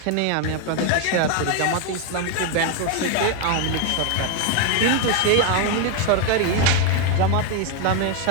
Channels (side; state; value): both; different; correlation 0.01